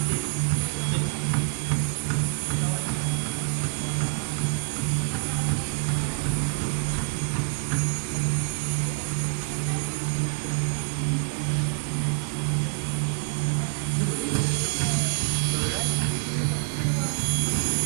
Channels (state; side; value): silent; left; digital silence